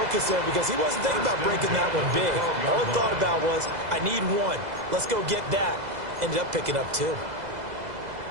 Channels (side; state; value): left; late; 2.0 ms